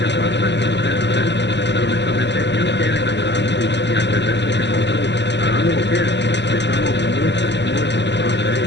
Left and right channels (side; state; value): right; late; 0.51 ms